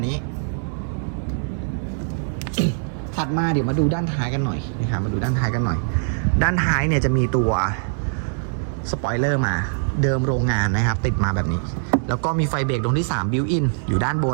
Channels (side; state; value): left; silent; digital silence